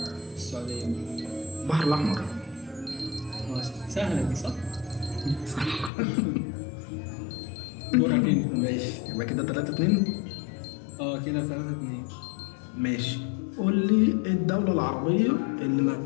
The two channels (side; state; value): right; drops out; at 5.9 s